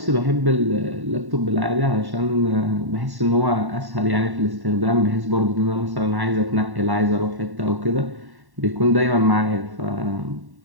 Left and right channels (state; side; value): late; left; 1.1 ms